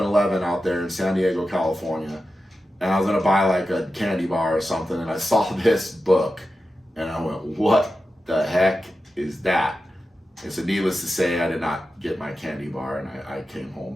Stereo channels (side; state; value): both; normal; correlation 0.92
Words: out there in San Diego, California, and I was going to buy like a candy bar or something, and I saw this book, and I went, what the heck is that? And so needless to say, I did not get my candy bar, and I came home